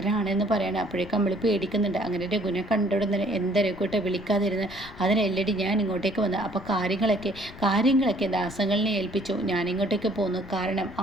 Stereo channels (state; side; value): noise; left; rumble, 18 dB below the sound